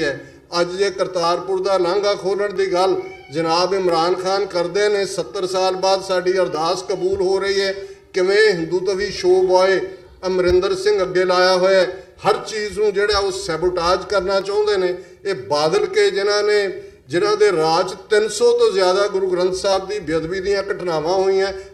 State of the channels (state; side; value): identical; both; correlation 1.00